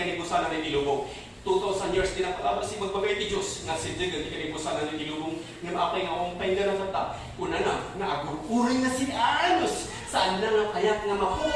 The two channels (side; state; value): both; identical; correlation 1.00